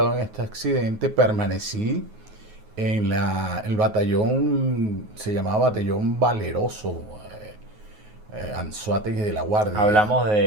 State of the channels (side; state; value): left; late; 9.4 ms